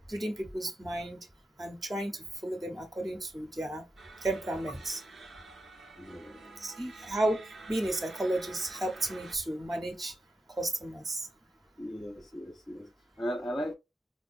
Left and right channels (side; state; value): both; normal; correlation 0.87